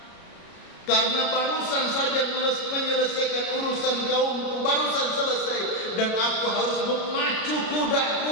Karena barusan saja menyelesaikan urusan kaumku, barusan selesai, dan aku harus memacu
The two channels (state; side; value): late; right; 33 ms